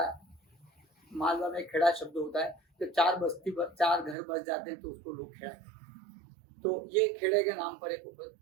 मालवा में खेड़ा शब्द होता है, तो चार घर बस जाते हैं तो उसको लोग खेड़ा कहते हैं। तो ये खेड़े के नाम पर एक उपद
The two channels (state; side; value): drops out; left; at 4.2 s